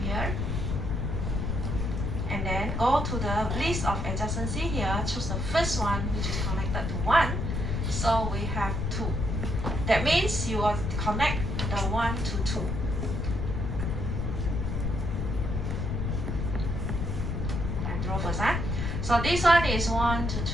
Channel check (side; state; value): left; noise; rumble, 1 dB below the sound